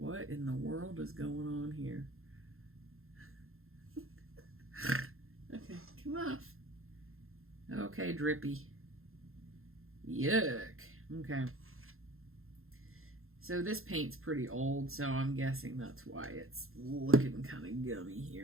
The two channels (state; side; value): late; left; 0.61 ms